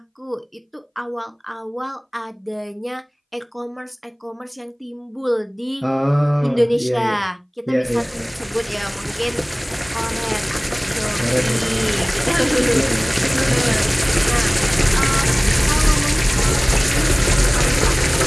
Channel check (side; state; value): both; identical; correlation 1.00